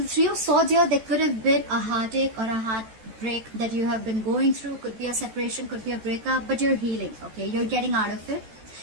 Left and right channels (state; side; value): late; left; 14 ms